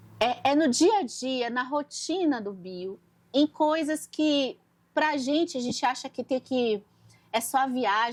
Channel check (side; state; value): both; identical; correlation 1.00